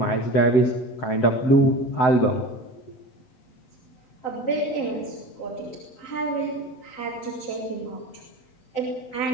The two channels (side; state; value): right; late; 7.8 ms